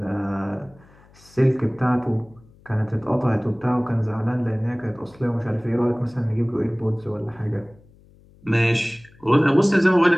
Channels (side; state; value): left; noise; hum, 27 dB below the sound